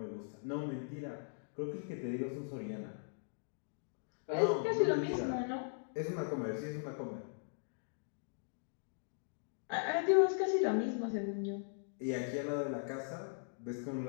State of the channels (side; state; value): right; silent; digital silence